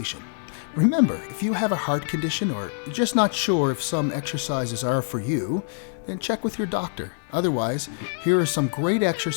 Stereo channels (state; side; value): silent; right; digital silence